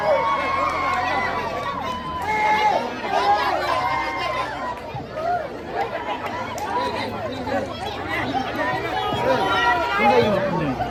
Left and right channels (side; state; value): both; identical; correlation 1.00